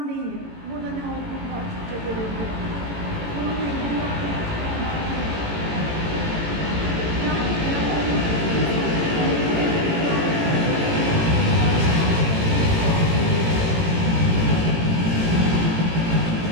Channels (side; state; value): left; late; 18 ms